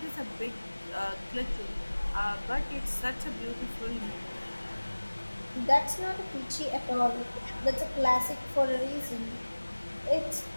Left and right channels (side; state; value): both; inverted; correlation -1.00